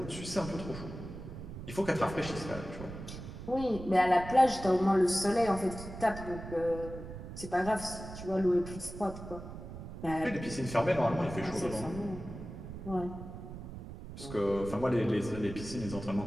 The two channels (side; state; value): right; noise; rumble, 11 dB below the sound